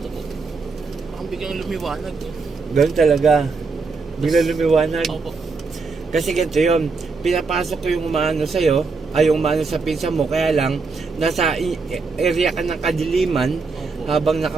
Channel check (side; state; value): left; quieter; 4.4 dB